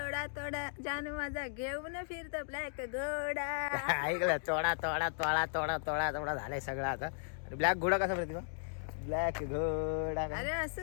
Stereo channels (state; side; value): silent; right; digital silence